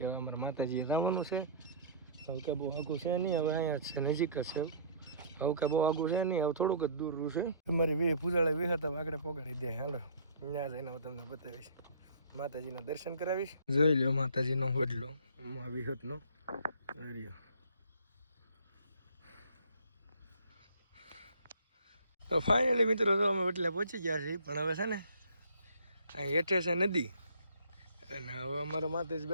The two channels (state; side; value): inverted; both; correlation -0.50